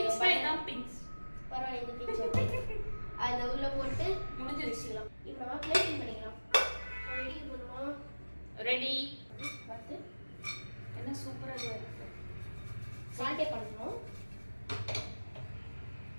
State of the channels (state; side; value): inverted; both; correlation -1.00